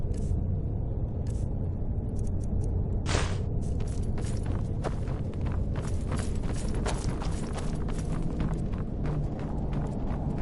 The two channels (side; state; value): both; identical; correlation 1.00